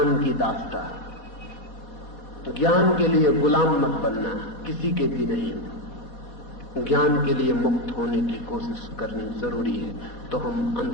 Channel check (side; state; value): right; late; 4.2 ms